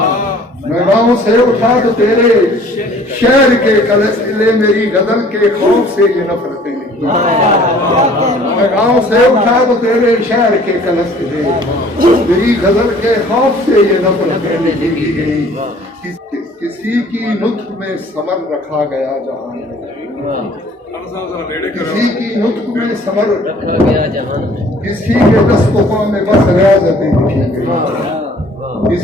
میں گاؤں سے اٹھا تو تیرے شہر کے کلس لے میری غزل کے خوف سے یہ نفرتیں لکھی میں گاؤں سے اٹھا تو تیرے شہر کے کلس لے میری غزل کے خوف سے یہ نفرتیں لکھی گئی کسی کی نطق میں ثمر رکھا گیا جہان میں کسی کی نطق میں ثمر رکھا گیا جہان میں کسی کے دست و پا میں بس ریاضتیں لکھی گئی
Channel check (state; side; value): normal; both; correlation 0.54